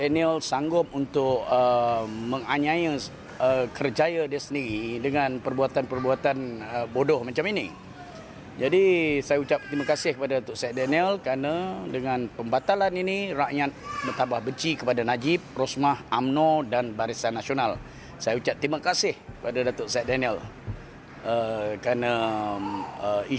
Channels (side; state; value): both; identical; correlation 1.00